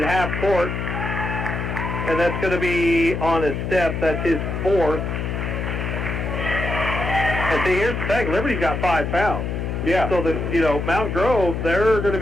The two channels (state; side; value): noise; left; hum, 3 dB below the sound